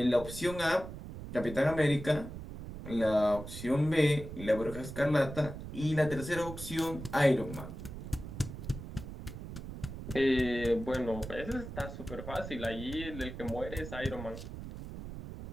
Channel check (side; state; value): right; noise; rumble, 10 dB below the sound